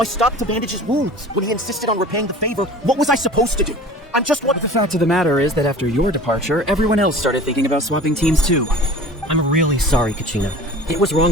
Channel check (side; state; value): both; normal; correlation 0.42